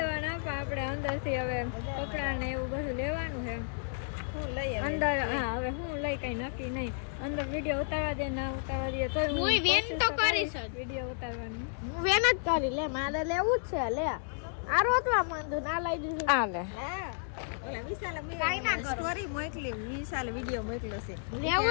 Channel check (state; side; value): silent; right; digital silence